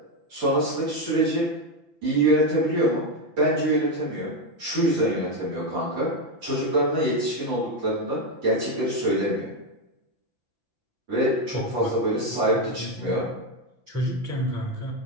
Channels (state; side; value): late; left; 5.9 ms